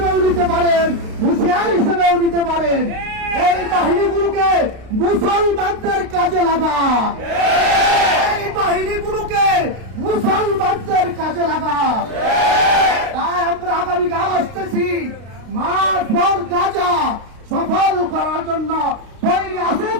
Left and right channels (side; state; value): left; late; 32 ms